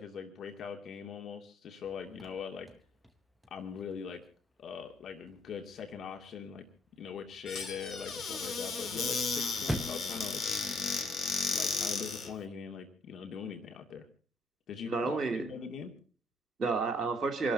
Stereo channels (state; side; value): normal; both; correlation 0.66